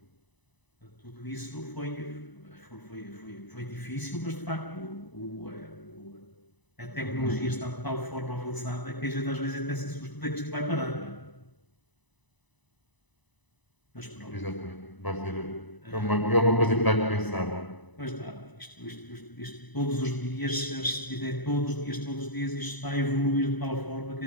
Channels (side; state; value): right; late; 1.0 ms